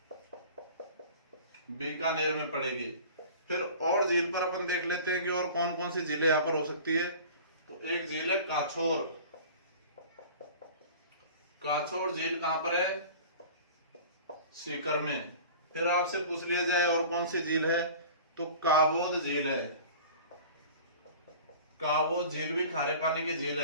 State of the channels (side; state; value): both; inverted; correlation -0.41